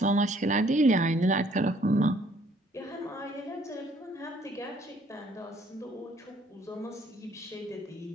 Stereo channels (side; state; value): both; normal; correlation 0.62